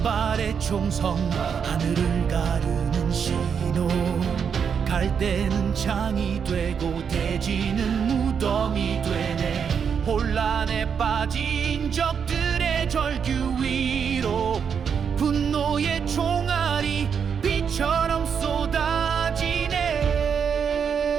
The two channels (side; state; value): left; quieter; 7.0 dB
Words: 발의 총성 하늘을 가르는 신호, 갈대는 창이 되고 대지는 무덤이 되네. 혼란에 빠진 적들의 절규 위로 분노의 총알이 비처럼 쏟아지네.